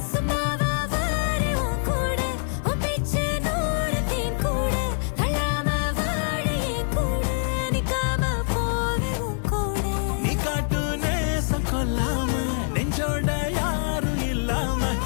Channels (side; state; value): right; silent; digital silence